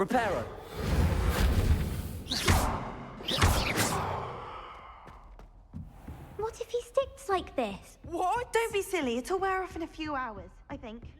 What if he sticks like this? What? Don't be silly. It'll wear off in a few hours, I think.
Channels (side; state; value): both; identical; correlation 1.00